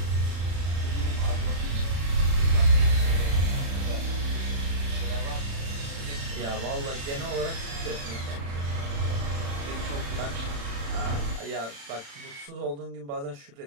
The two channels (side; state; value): left; late; 35 ms